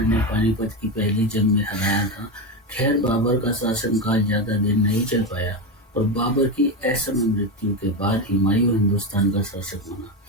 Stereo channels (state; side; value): normal; both; correlation 0.15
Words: पानीपत की पहली जंग में हराया था। खैर, बाबर का शासनकाल ज्यादा दिन नहीं चल पाया और बाबर की असमय मृत्यु के बाद हुमायूं हिंदुस्तान का शासक बना।